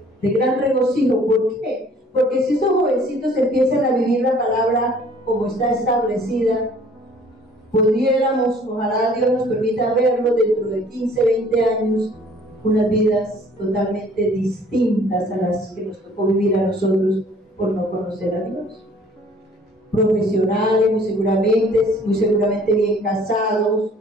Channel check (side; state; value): both; normal; correlation 0.55